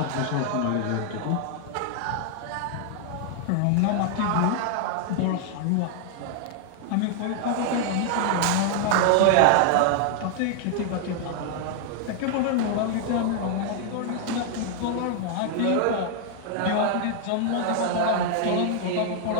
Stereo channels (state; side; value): different; both; correlation 0.00